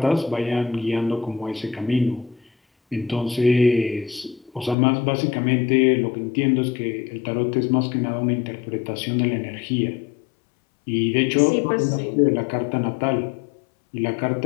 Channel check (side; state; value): right; drops out; at 4.8 s